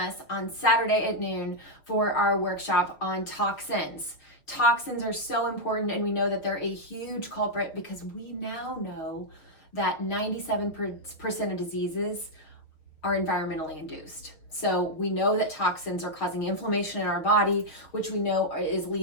on Saturday at noon for our workshop on toxins. Toxins are so important, and we know that they're a huge culprit because we now know that 97% of diseases are environmentally induced. So we know that toxins are causing inflammation in our body, which we know is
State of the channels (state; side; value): late; right; 6.5 ms